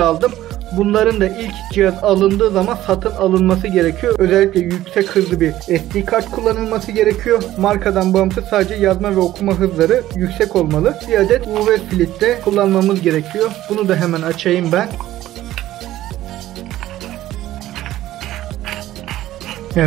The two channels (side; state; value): left; quieter; 14.3 dB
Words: Bunların da ilk cihaz alındığı zaman satın alınması gerekiyor. Özellikle yüksek hızlı bir SD kart kullanılması gerekiyor. Markadan bağımsız sadece yazma ve okuma hızları yüksek olmalı. Bir adet UV filtre kullanmamız gerekiyor. Bunu da hemen açayım ben.